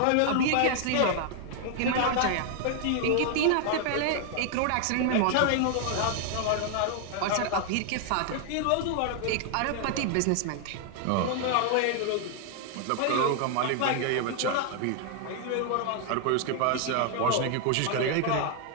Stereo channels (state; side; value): different; both; correlation 0.00